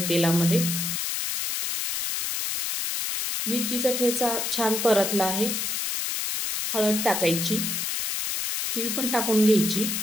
तेलामध्ये। मिरचीचा ठेचा छान परतला आहे। हळद टाकायची, तीळ पण टाकून घ्यायची,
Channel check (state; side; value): noise; left; hiss, 2 dB below the sound